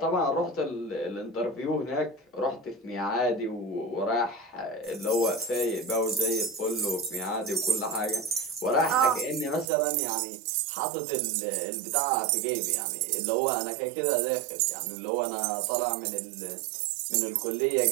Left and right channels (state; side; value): drops out; left; at 9.7 s